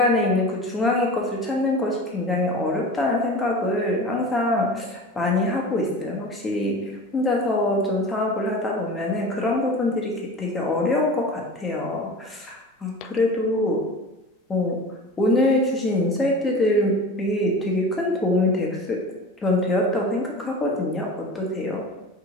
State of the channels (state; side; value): normal; both; correlation 0.35